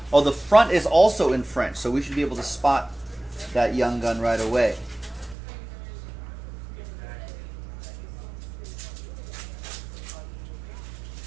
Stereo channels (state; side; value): drops out; left; at 5.4 s